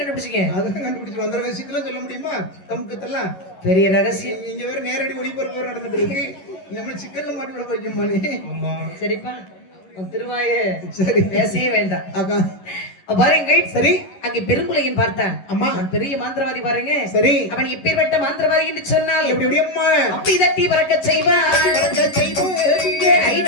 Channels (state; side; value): late; right; 11 ms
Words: அதெல்லாம் கண்டுபிடிச்சு அந்த ரகசியத்தெல்லாம் சொல்ல முடியுமா? தமுக்கத்தெல்லாம் பெரிய ரகசியம். இங்க வேற நேரடி ஒளிபரப்பு நடந்துட்டு இருக்கு. நம்ம சிக்கல்ல மாட்டி விட வைக்குமானே. ஆமா சரிப்பா உன் திருவாய சரி பேசவே வேண்டாம். அக்கா பாருங்கள். சரி அங்கே பெருங்குலையின் பார்த்தான். அம்மா அவன் பெரிய மாந்திரவாதி பாருங்க. சரி அவன் எப்பேற்பட்ட மாந்திரவாதி என்று சொன்னால் எப்படி எப்படி அம்மா அப்படி தட்டி பறக்க செய்வான்.